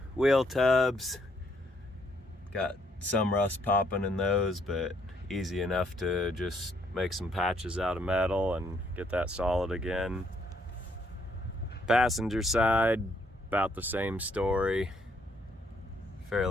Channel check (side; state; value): both; normal; correlation 0.70